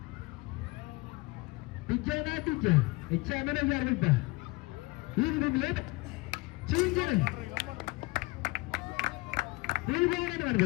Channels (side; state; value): right; quieter; 23.8 dB